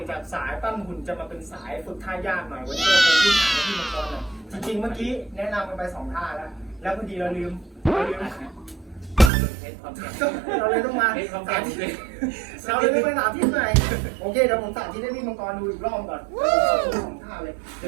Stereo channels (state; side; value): drops out; left; at 9.3 s